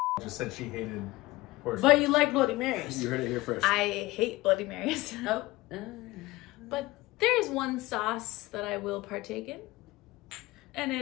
Just said she hated horse. But you like Bloody Marys. You heard it here first. I hate Bloody Marys. Oh. But there is one sauce that I will partake in, and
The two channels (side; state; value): right; quieter; 19.8 dB